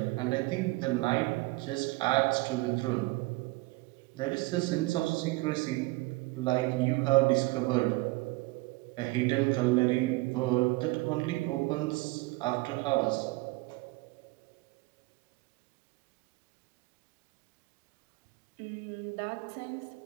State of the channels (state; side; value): quieter; left; 22.6 dB